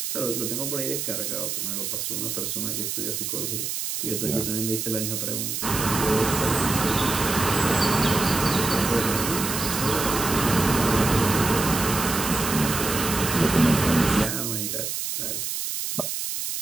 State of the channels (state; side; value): noise; right; hiss, 3 dB below the sound